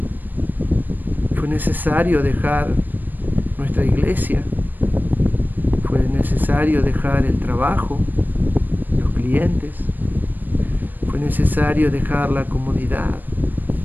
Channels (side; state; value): left; late; 0.089 ms